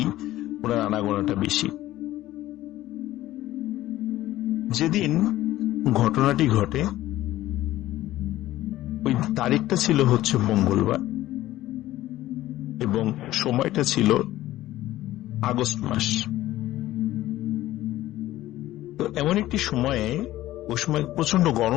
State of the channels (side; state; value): right; quieter; 15.3 dB